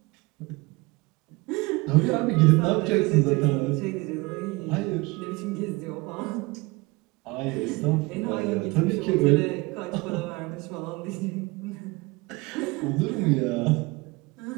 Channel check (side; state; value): left; quieter; 24.4 dB